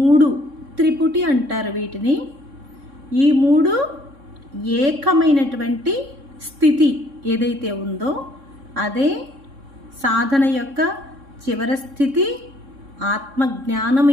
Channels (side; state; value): left; late; 3.6 ms